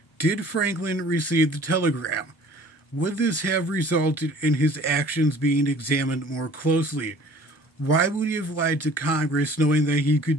did Franklin receive the telegram? Would this have resulted in his actions being examined more closely? Why would he have lied to Congress knowing that he could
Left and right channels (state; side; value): normal; both; correlation 0.50